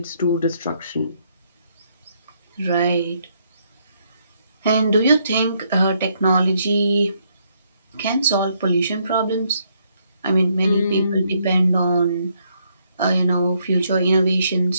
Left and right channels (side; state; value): both; inverted; correlation -0.73